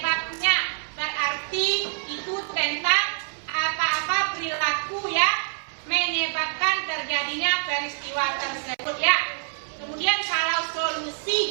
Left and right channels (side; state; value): left; silent; 61 dB below the other